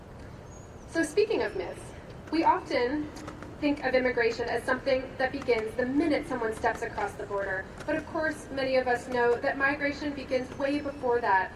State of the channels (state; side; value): identical; both; correlation 1.00